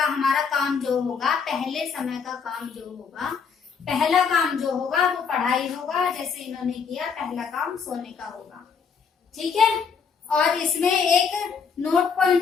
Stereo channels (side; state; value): right; quieter; 6.1 dB